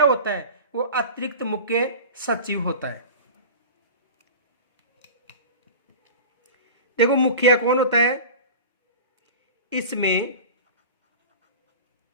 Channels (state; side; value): inverted; both; correlation -0.33